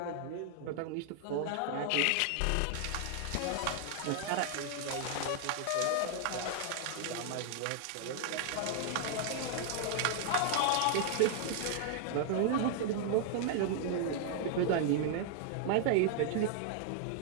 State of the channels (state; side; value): different; both; correlation 0.00